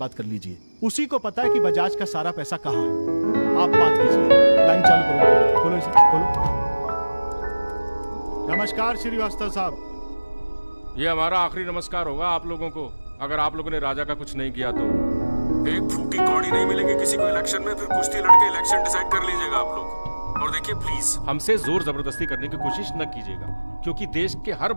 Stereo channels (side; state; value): both; inverted; correlation -1.00